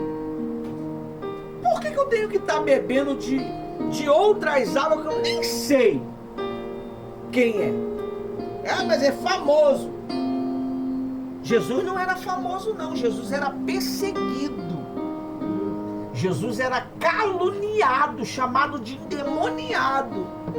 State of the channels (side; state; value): both; identical; correlation 1.00